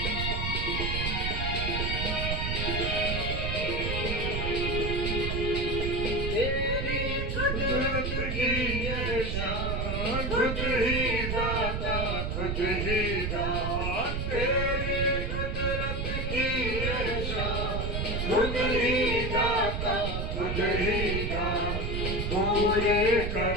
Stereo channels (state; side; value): noise; right; rumble, 1 dB below the sound